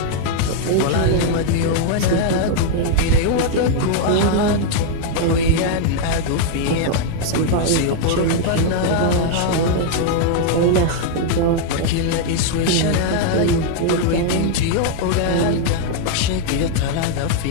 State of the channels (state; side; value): different; both; correlation 0.00